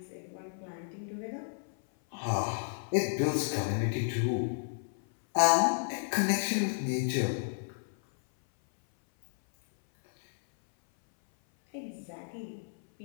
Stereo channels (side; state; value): right; silent; 56 dB below the other